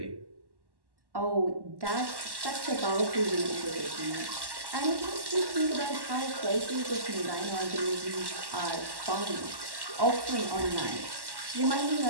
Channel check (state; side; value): late; left; 1.1 ms